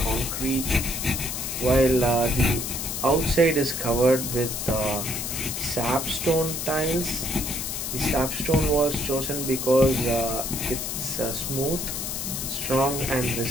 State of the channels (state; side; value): noise; left; hiss, 4 dB below the sound